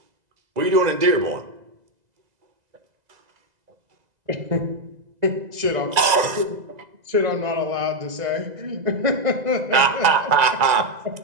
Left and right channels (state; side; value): late; left; 2.0 ms